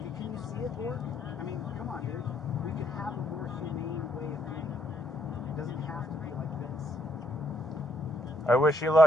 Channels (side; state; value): both; normal; correlation 0.71